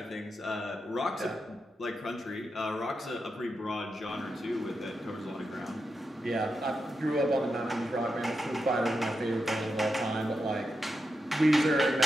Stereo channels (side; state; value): both; normal; correlation 0.87